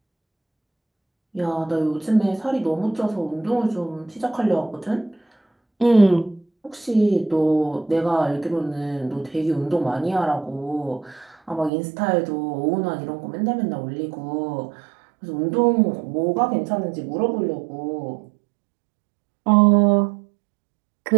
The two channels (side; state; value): left; drops out; at 11.7 s